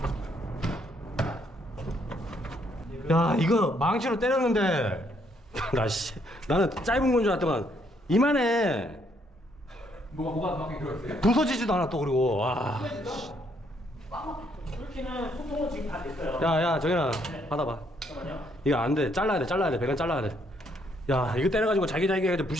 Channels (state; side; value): normal; both; correlation 0.70